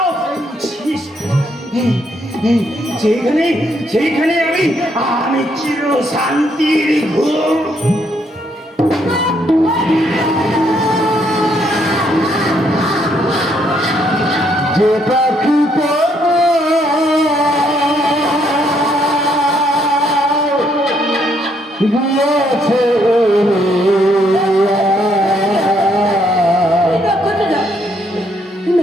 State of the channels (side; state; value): both; normal; correlation 0.72